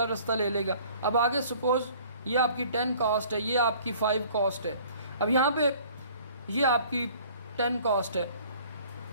रास्ता ले लेगा। अब आगे सपोज़ ये आपकी 10 कॉस्ट है, ये आपकी 5 कॉस्ट है। अब यहाँ पे ये आपकी 10 कॉस्ट है।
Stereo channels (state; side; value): inverted; both; correlation -0.52